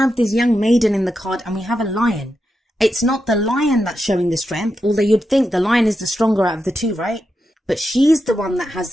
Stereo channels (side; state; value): both; normal; correlation 0.87